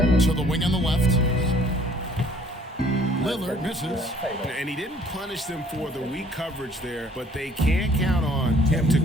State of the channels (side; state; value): both; normal; correlation 0.58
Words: To the wing on the left. Lillard misses. And he didn't punish them for the weak coverage there, but they can't count on him to